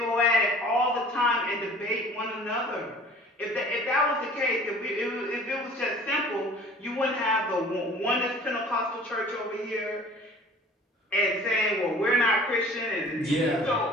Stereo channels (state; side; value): normal; both; correlation 0.47